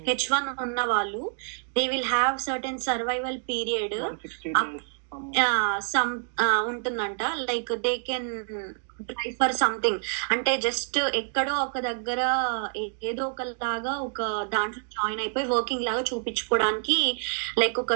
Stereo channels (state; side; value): silent; left; digital silence